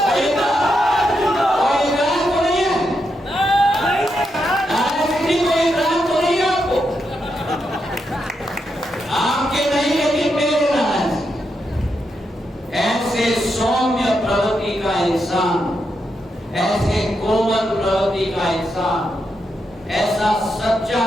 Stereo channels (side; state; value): both; normal; correlation 0.83